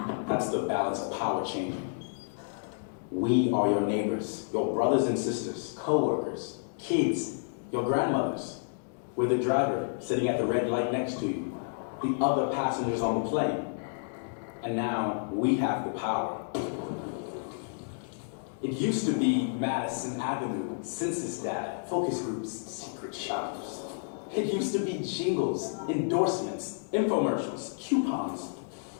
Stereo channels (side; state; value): right; silent; digital silence